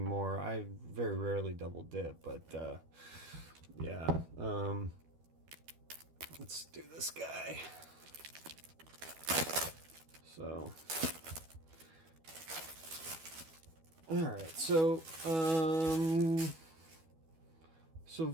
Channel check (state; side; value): late; left; 12 ms